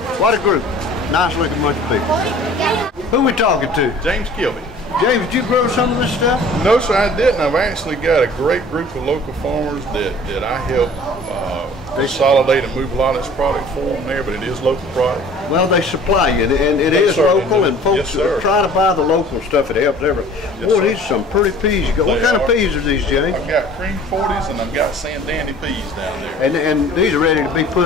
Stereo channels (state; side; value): normal; both; correlation 0.48